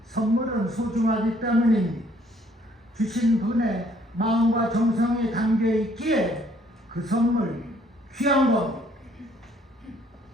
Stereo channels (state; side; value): normal; both; correlation 0.63